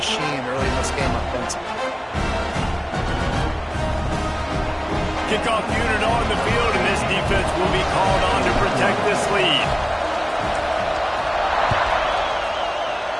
early in this game offensively. Kickoff unit on the field, and this defense will be called on to protect this lead.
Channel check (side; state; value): both; identical; correlation 1.00